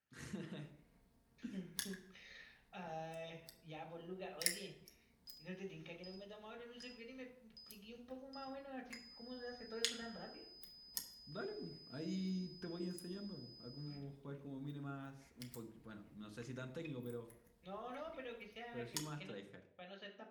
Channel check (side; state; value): both; identical; correlation 1.00